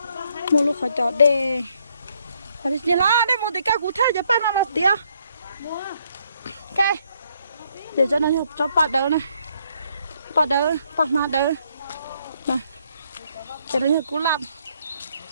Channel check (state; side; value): inverted; both; correlation -0.71